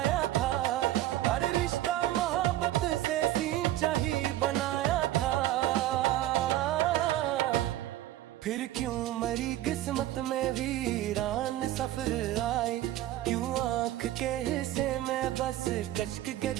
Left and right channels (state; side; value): quieter; left; 14.3 dB